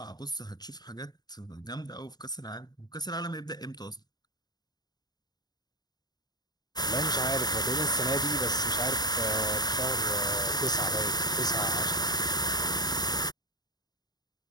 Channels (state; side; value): late; right; 0.20 ms